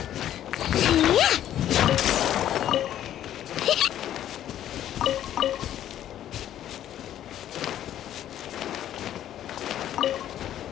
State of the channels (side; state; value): right; quieter; 11.5 dB